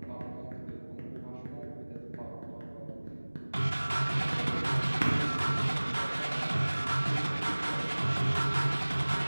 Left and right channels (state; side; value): inverted; both; correlation -1.00